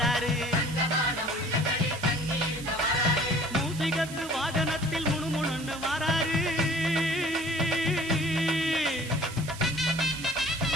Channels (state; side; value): noise; right; hiss, 14 dB below the sound